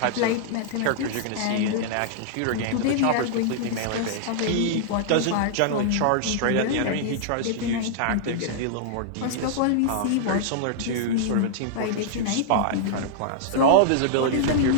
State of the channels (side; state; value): both; different; correlation -0.01